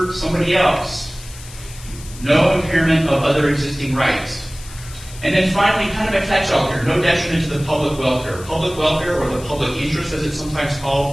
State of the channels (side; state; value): left; noise; hiss, 17 dB below the sound